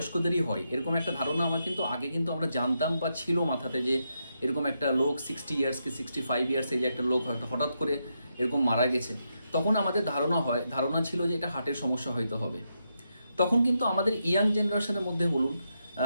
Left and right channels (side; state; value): both; inverted; correlation -0.83